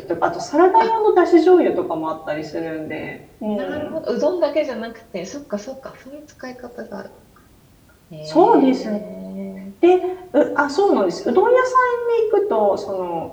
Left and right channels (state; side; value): identical; both; correlation 1.00